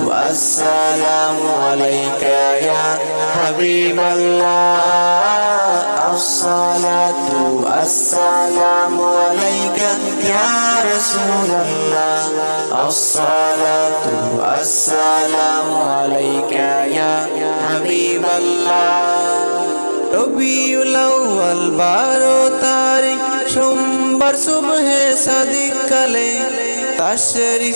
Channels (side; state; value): both; inverted; correlation -1.00